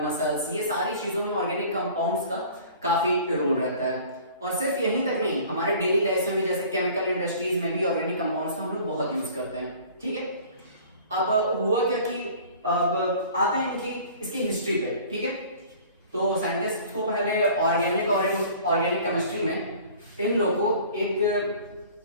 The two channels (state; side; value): inverted; both; correlation -0.47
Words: मसल्स, ये सारी चीजों में ऑर्गेनिक कंपाउंड्स का काफी रोल रहता है. और सिर्फ यहीं तक नहीं, हमारे डेली लाइफ में भी जैसे केमिकल इंडस्ट्रीज में भी ऑर्गेनिक कंपाउंड्स का हम लोग बहुत यूज करते हैं. ठीक है, अब हुआ क्या कि अब आते हैं कि इसकी हिस्ट्री पे. ठीक है, तो साइंटिस्ट को पहले ऑर्गेनिक और ऑर्गेनिक केमिस्ट्री में इन लोगों को एक